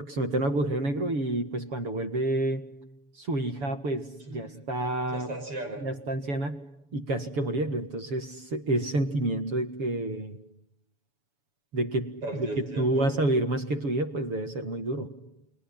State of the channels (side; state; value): left; late; 7.1 ms